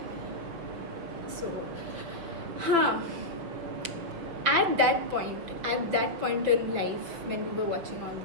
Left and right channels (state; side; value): late; left; 6.0 ms